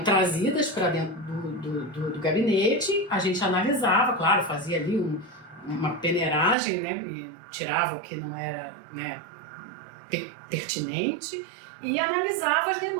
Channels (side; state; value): left; drops out; at 6.6 s